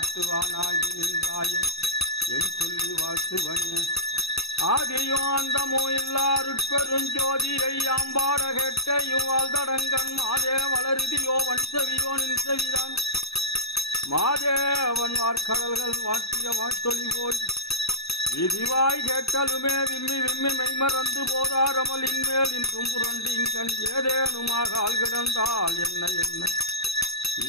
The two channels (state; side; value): late; right; 0.78 ms